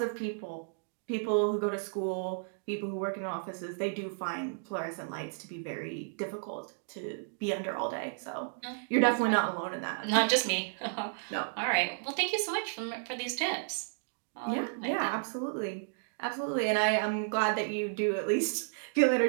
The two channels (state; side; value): silent; left; digital silence